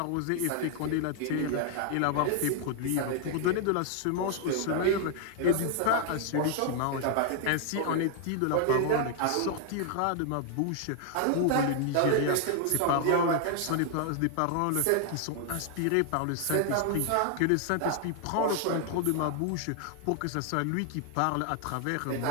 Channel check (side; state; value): both; different; correlation 0.00